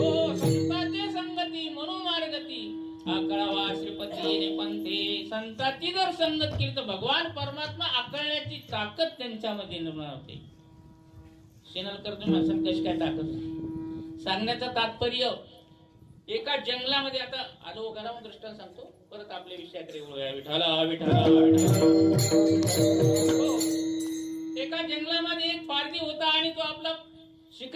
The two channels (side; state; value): both; identical; correlation 1.00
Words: आकळावा श्रीपती पंथे. संतांची जर संगत केली तर भगवान परमात्मा आकळण्याची ताकद त्यांच्यामध्ये निर्माण होते. शेनलकर तुम्ही असं कशी काय ताकद सांगण्याचं तात्पर्य, एका जंगलामध्ये आता आलो घरामध्ये दृष्टांत सांगतो, परत आपल्या विषयाकडे वळूया. विठाला विठाला एका जंगलामध्ये एक पारधी होता आणि तो आपला